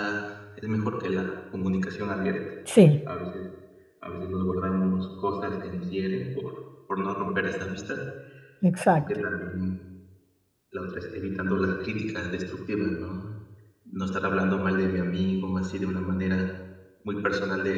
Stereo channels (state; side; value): identical; both; correlation 1.00